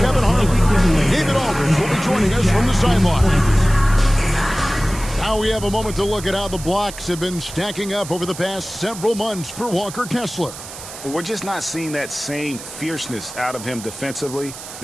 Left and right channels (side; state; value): right; noise; hiss, 13 dB below the sound